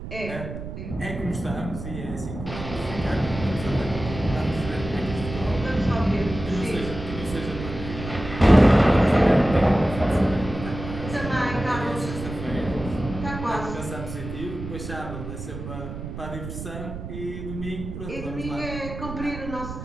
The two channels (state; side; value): noise; right; rumble, 9 dB below the sound